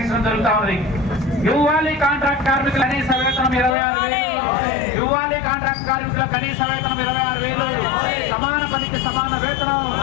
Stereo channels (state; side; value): drops out; right; at 3.8 s